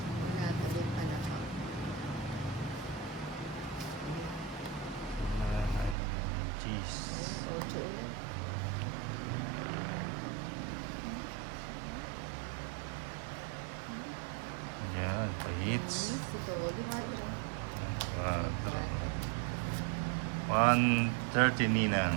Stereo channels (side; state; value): left; drops out; at 6.0 s